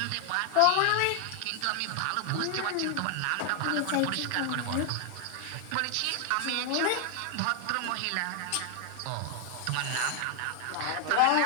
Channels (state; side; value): different; both; correlation 0.00